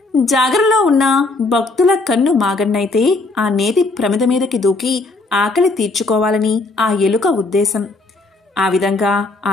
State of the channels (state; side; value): quieter; right; 3.3 dB